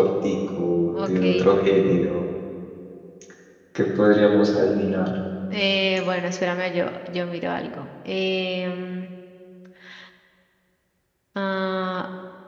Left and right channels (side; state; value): both; identical; correlation 1.00